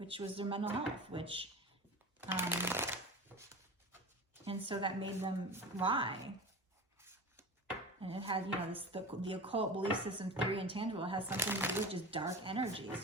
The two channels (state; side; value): normal; both; correlation 0.31